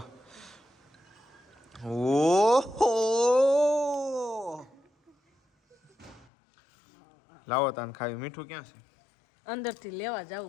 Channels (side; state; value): right; drops out; at 6.2 s